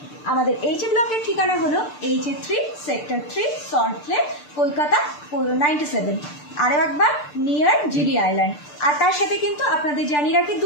আমাদের এইচে ব্লকের ঠিকানা হলো HA3 সেক্টর 3 সল্টলেক, কলকাতা 97। আরও একবার নিয়ার জিডি আইল্যান্ড। আর তার সাথে কিন্তু আপনাদের জানিয়ে রাখি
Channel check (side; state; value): right; late; 6.7 ms